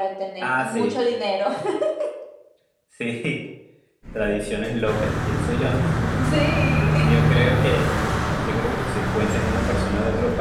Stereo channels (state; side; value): identical; both; correlation 1.00